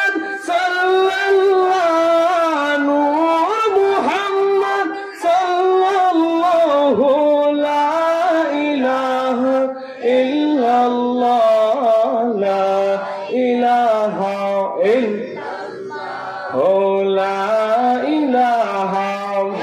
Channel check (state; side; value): identical; both; correlation 1.00